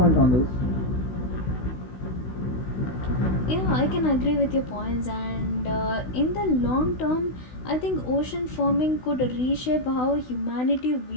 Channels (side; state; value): right; late; 16 ms